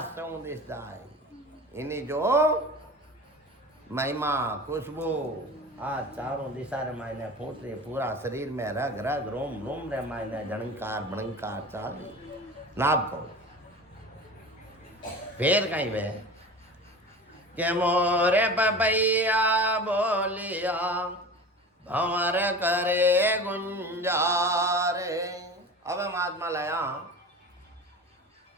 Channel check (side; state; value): both; normal; correlation 0.35